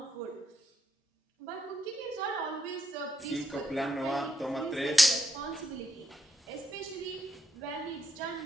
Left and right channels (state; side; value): normal; both; correlation 0.79